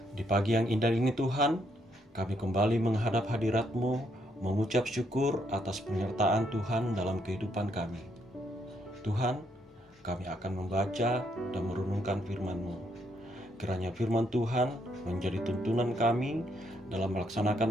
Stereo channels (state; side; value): normal; both; correlation 0.73